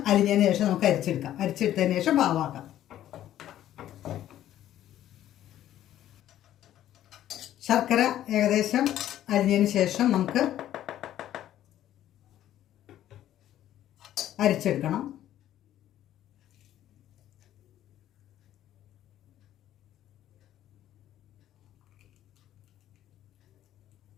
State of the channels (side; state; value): right; quieter; 12.3 dB